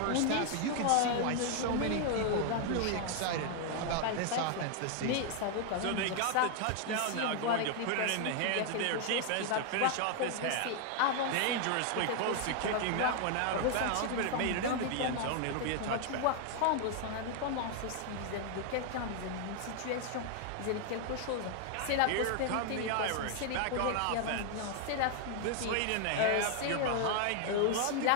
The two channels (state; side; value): different; both; correlation 0.00